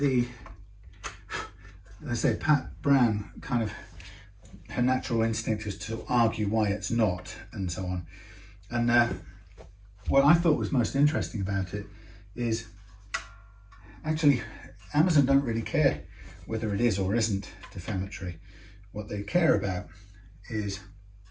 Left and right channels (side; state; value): both; identical; correlation 1.00